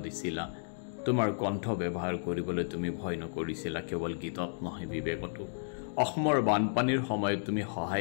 দিছিলা তোমাৰ কণ্ঠ ব্যৱহাৰ কৰিবলৈ তুমি ভয় নকৰিছিলা কেৱল গীতত নহয় বিবেকতো অসমৰ বানপানীৰ সময়ত তুমি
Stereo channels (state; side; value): silent; right; digital silence